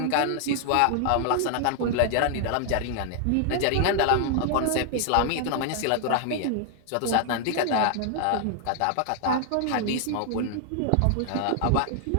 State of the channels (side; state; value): both; different; correlation 0.00